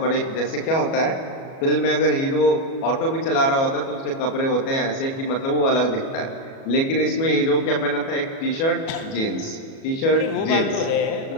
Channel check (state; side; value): late; right; 37 ms